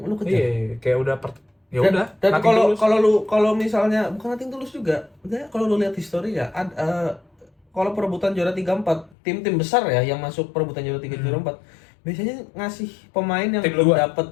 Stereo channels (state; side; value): drops out; right; at 9.2 s